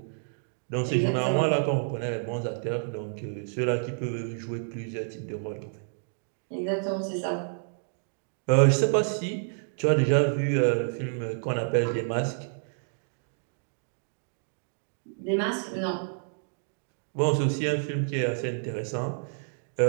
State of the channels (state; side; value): silent; left; digital silence